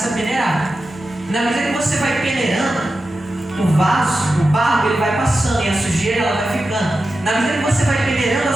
a peneirar. Na medida que você vai peneirando, o vaso, o barro, ele vai passando e a sujeira ela vai ficando. Na medida que você vai peneirando, a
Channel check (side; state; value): both; normal; correlation 0.92